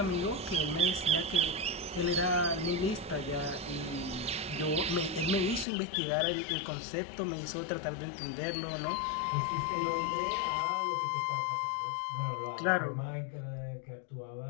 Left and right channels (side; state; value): right; drops out; at 5.7 s